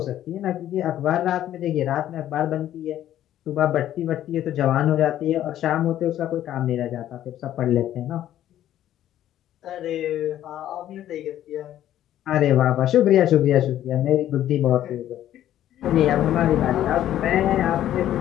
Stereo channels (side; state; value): right; quieter; 12.1 dB